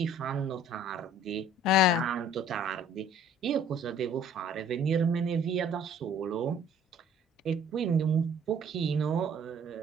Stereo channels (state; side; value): normal; both; correlation 0.54